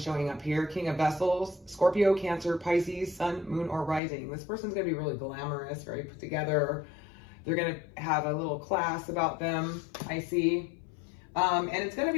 up here. King of Vessels, Scorpio, Cancer, Pisces, Sun, Moon, or Rising. This person's gonna be really glamorous, very put together. They're gonna have a little class about them, I see. And it's going to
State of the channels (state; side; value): drops out; right; at 4.0 s